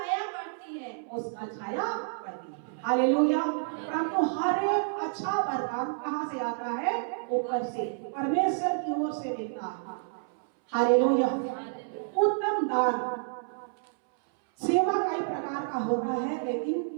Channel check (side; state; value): left; silent; 58 dB below the other